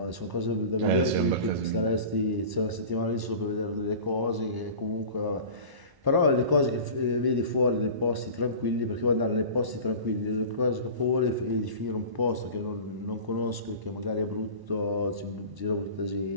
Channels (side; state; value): left; late; 1.0 ms